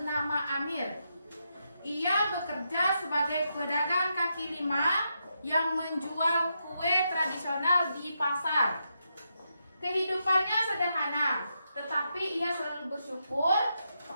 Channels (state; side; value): inverted; both; correlation -0.83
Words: Amir. Ia bekerja sebagai pedagang kaki lima yang menjual kue tradisional di pasar. Kehidupannya sederhana, tetapi ia selalu bersyukur